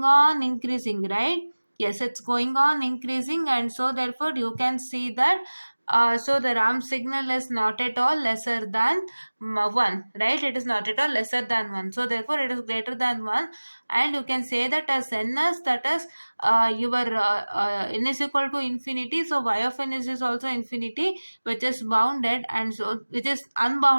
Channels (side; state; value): both; inverted; correlation -1.00